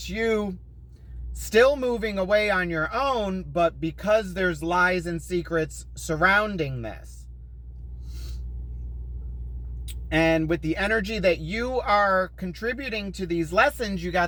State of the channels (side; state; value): both; identical; correlation 1.00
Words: you still moving away on your own, but because there's lies and secrets surrounding this. And with the energy that you are contributing to these lessons, you